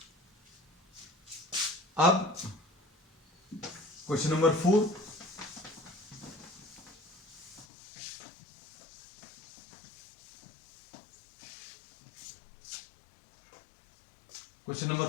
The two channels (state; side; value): drops out; right; at 7.7 s